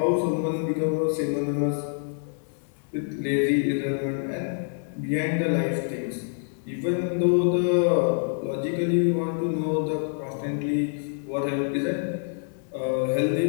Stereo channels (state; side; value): silent; right; 61 dB below the other